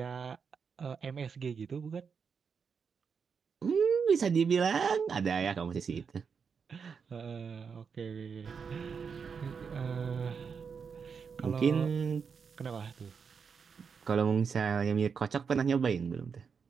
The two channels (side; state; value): left; quieter; 6.1 dB